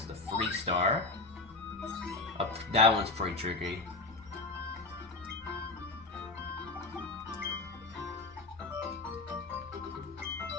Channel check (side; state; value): right; quieter; 3.4 dB